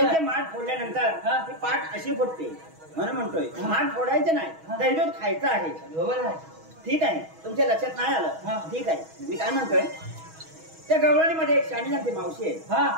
माठ फोडल्यानंतर ती पाठ अशी फुटते म्हणून म्हणतोय माठ फोडायचे नाही, दही दूध खायचं आहे. बरोबर आहे, ठीक आहे, तुमच्या लक्षात नाही आलं, ठीक आहे. मी काय म्हणतोय, त्या गवळणीमध्ये एक शाणी जाणती मावशी आहे,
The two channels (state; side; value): late; left; 6.2 ms